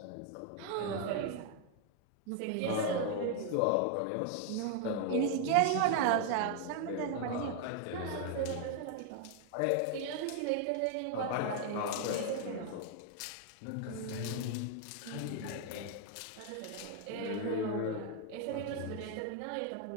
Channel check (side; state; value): both; different; correlation 0.00